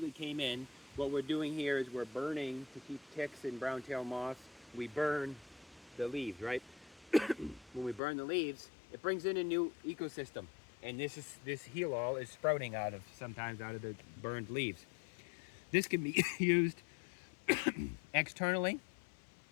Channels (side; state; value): right; drops out; at 8.0 s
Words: came in. What we're doing here is we're burning to keep ticks and brown-tailed moths. We burn the leaves, right? When we burn the leaves, it brings in a new ecosystem. And this heel all is sprouting sometimes out of the burned leaves. This can be used Externally,